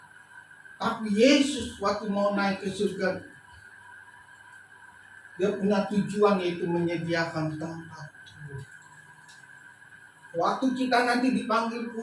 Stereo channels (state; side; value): identical; both; correlation 1.00